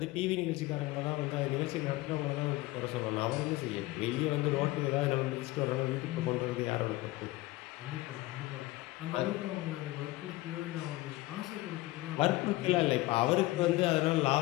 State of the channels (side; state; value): right; quieter; 19.2 dB